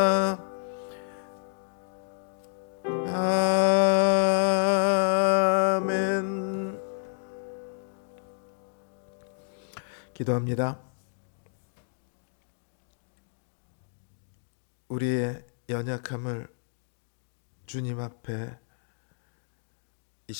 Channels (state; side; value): silent; right; digital silence